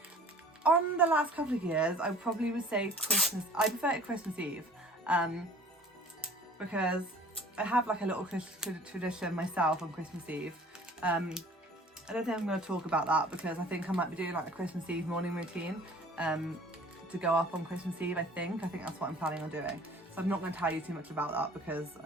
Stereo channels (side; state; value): both; normal; correlation 0.49